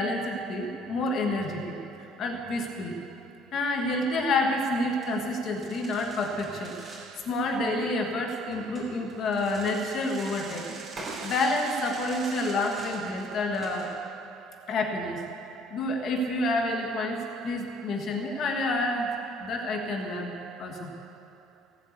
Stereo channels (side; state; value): both; normal; correlation 0.58